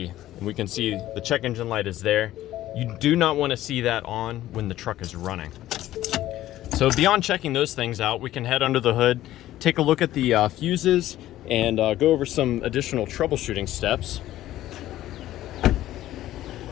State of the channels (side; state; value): right; quieter; 14.1 dB